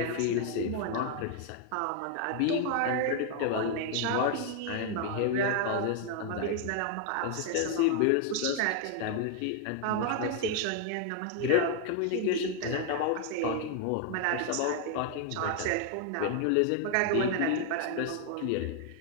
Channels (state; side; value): different; both; correlation 0.00